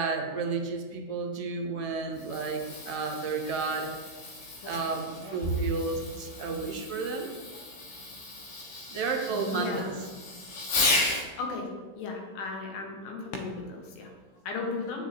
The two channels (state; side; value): late; right; 16 ms